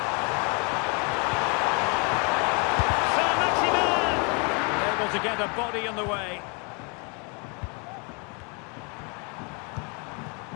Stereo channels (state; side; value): quieter; right; 34.0 dB